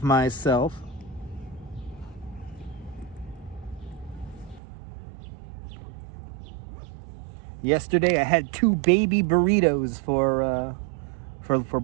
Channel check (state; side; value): drops out; left; at 4.6 s